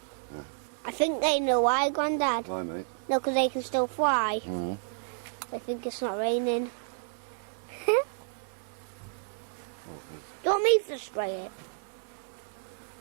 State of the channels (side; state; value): left; silent; 57 dB below the other